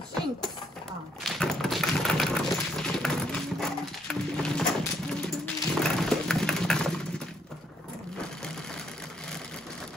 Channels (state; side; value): normal; both; correlation 0.71